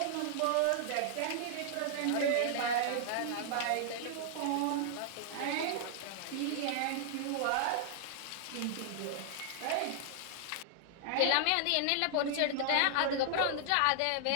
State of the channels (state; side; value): different; both; correlation -0.01